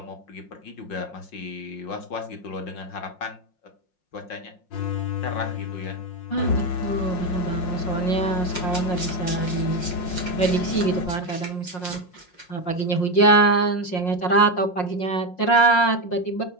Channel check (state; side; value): late; right; 5.6 ms